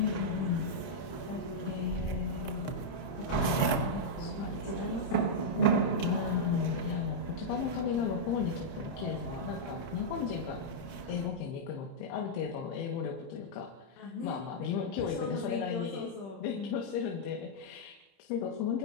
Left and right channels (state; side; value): late; right; 30 ms